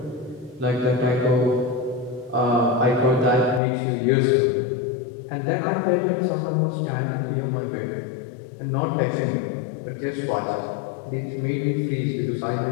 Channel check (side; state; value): right; drops out; at 3.6 s